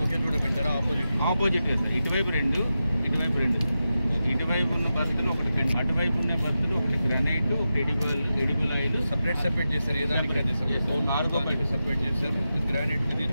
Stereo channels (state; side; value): inverted; both; correlation -0.91